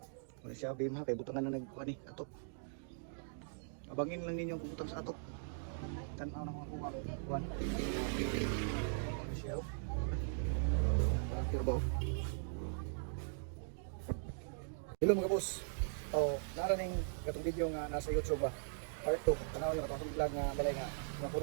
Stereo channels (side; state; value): left; silent; digital silence